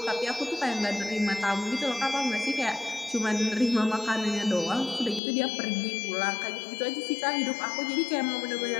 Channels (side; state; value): right; drops out; at 5.2 s